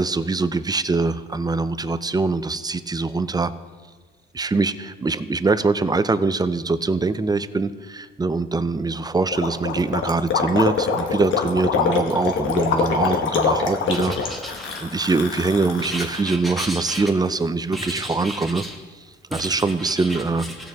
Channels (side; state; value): both; normal; correlation 0.59